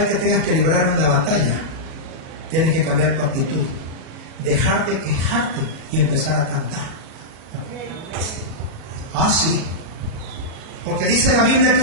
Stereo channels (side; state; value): left; late; 37 ms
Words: que tengas que librar una batalla, tienes que cambiar tu actitud. Dejar de quejarte y empezar a cantar. Ah, sí. Porque dice la Biblia que